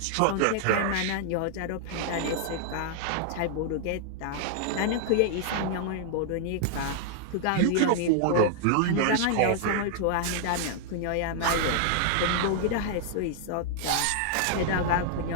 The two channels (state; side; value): different; both; correlation -0.01